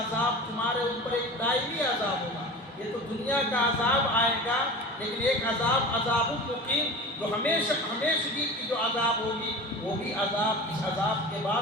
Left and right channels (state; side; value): normal; both; correlation 0.34